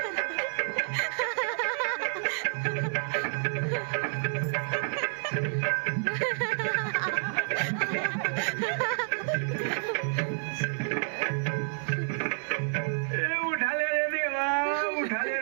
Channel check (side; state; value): left; silent; digital silence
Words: उठा ले रे देवा, उठा ले